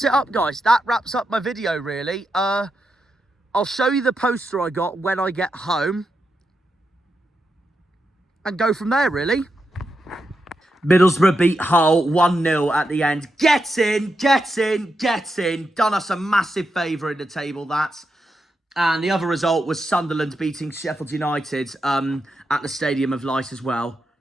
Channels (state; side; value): normal; both; correlation 0.86